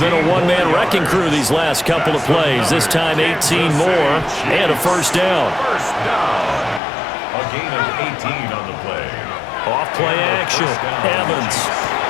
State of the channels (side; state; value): right; drops out; at 6.8 s